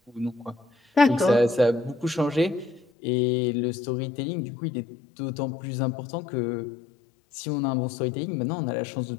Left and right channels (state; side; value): drops out; right; at 2.9 s